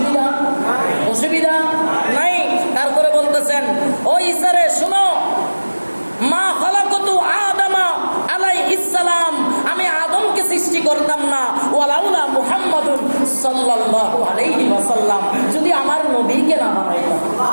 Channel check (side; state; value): both; inverted; correlation -1.00